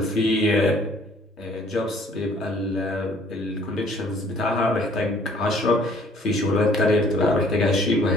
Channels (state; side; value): normal; both; correlation 0.57